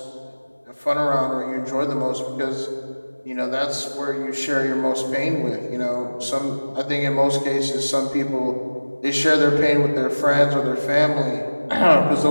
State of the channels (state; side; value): inverted; both; correlation -1.00